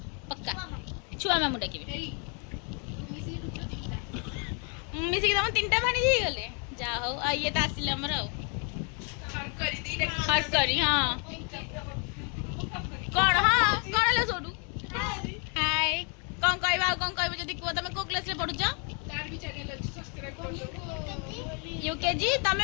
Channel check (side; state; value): right; quieter; 37.8 dB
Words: पक्का छुआ मामू डाकिबि मिसी के तम तीनटा भाणी जे गले जा हो आ ये त आसिले हमर हट करी हां कौन हाँ कौन है सोडू हाय कौन कहबा कौन कहबो जदी को तमे को क्लास रे पढु छ तार भी चैनल अछि सब्सक्राइब कर दो यूकेजी